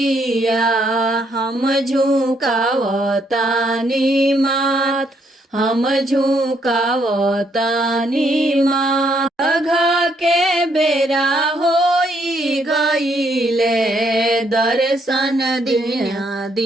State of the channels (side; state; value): both; normal; correlation 0.72